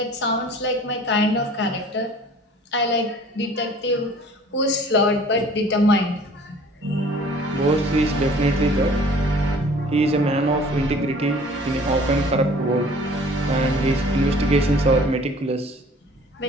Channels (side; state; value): both; normal; correlation 0.50